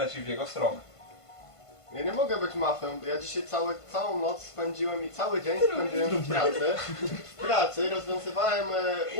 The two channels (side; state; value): right; late; 1.5 ms